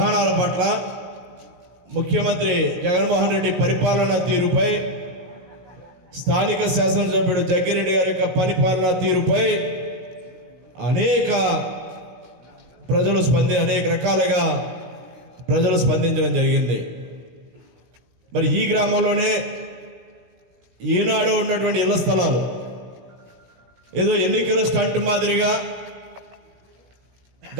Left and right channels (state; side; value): late; left; 16 ms